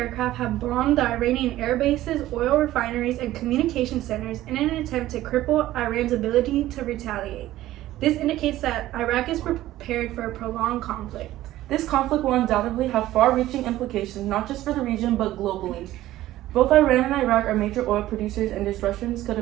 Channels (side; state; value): left; quieter; 15.0 dB